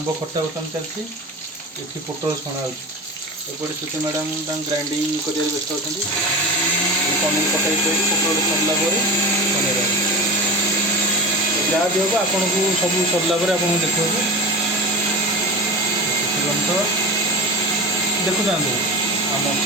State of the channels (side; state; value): both; normal; correlation 0.28